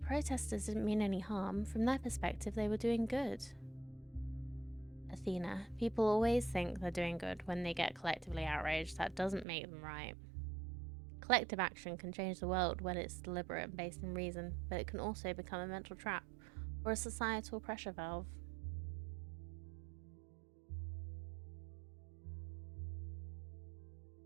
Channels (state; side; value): drops out; left; at 9.5 s